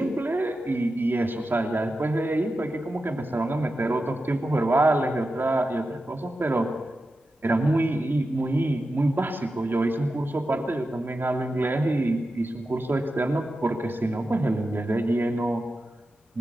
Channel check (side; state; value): both; normal; correlation 0.91